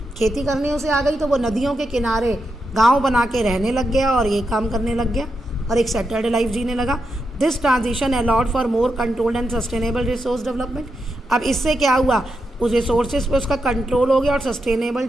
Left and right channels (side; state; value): both; normal; correlation 0.85